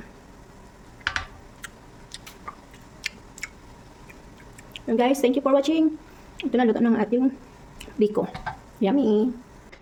And guys, thank you for watching. Ito na luto ng ating biko. Yummy!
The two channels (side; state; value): both; identical; correlation 1.00